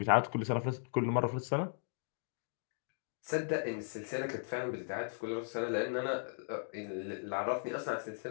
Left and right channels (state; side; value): silent; right; digital silence